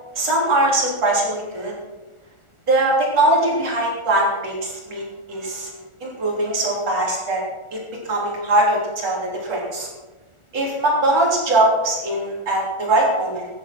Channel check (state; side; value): late; right; 1.4 ms